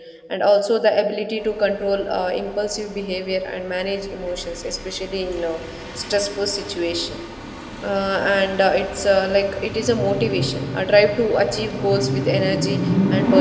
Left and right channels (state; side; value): identical; both; correlation 1.00